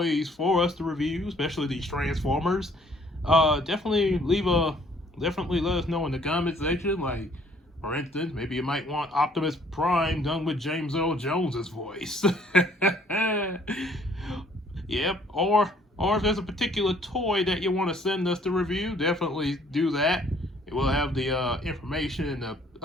for us to review, especially these Transformers, definitely let us know in the comment section. Like, for instance, maybe you might want Optimus Prime done with James Earl Jones's voice. Yep. Or if there's a particular toy that you want to send us to review, definitely do that. We'll have the information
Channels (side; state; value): both; normal; correlation 0.61